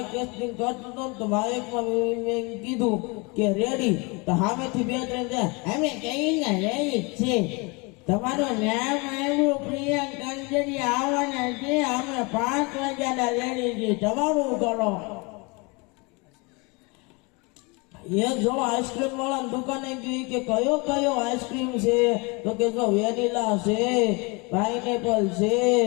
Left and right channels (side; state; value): right; quieter; 28.5 dB